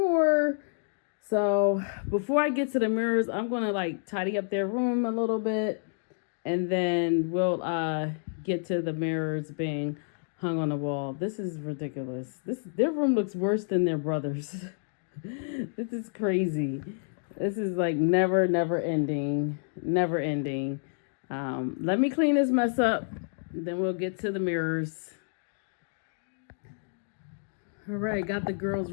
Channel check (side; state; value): right; silent; digital silence